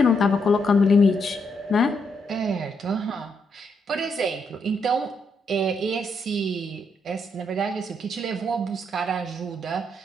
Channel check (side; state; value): both; normal; correlation 0.78